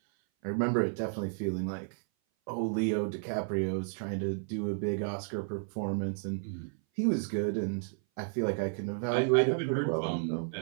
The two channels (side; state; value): left; silent; 56 dB below the other